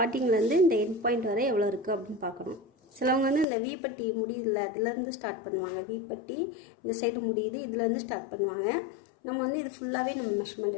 இந்த எண்ட் பாயிண்ட் வரை எவ்வளோ இருக்குது அப்படின்னு பார்க்கணும். சிலவங்க வந்து இந்த வீப்பட்டி முடியுதில்ல, அதுலேருந்து ஸ்டார்ட் பண்ணுவாங்க. வீப்பட்டி இந்த சைடு முடியுது, இதுலேருந்து ஸ்டார்ட் பண்ணுவாங்க. நம்ம வந்து இது ஃபுல்லாகவே நம்ம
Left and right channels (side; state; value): right; drops out; at 3.5 s